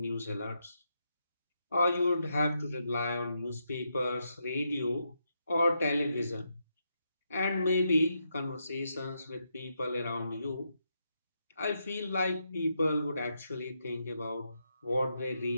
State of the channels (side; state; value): both; inverted; correlation -0.82